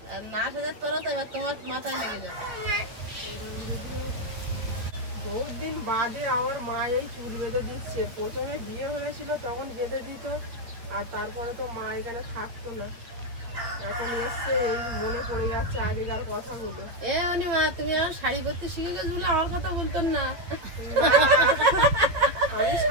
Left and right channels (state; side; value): late; left; 8.5 ms